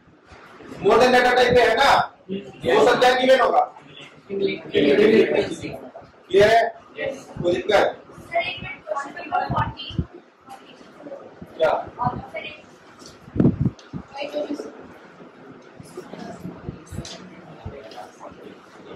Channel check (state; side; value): identical; both; correlation 1.00